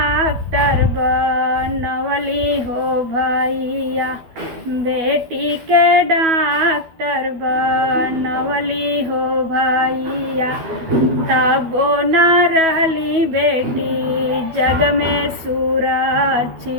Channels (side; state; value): left; late; 12 ms